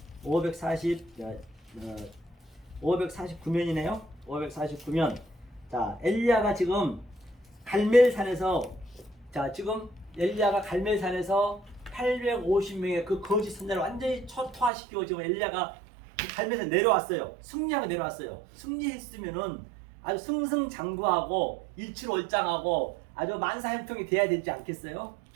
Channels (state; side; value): drops out; left; at 14.7 s